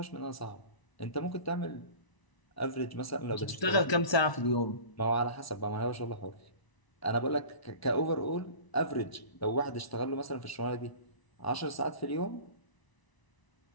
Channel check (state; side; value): late; right; 1.0 ms